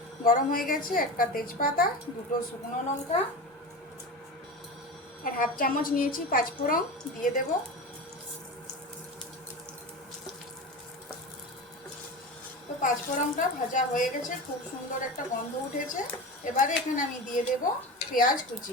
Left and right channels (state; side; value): normal; both; correlation 0.27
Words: গরম হয়ে গেছে। একটা তেজপাতা, দুটো শুকনো লঙ্কা, আর 1/2 চামচ নিয়েছি পাঁচফোড়ন, দিয়ে দেব। তো পাঁচফোড়নটা ভাজা হয়ে গেছে, খুব সুন্দর একটা গন্ধ উঠেছে। এবারে এখানে আমি দিয়ে দেব পেঁয়াজ